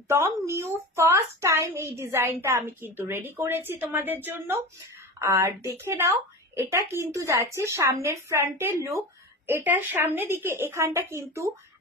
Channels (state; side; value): normal; both; correlation 0.29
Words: নিউ, ফার্স্ট টাইম এই ডিজাইনটা আমি কিন্তু রেডি করেছি তোমাদের জন্য। আর দেখে নাও, এটা কিন্তু যাচ্ছে সামনের ফ্রন্টের লুক। এটা সামনের দিকে এখানটা কিন্তু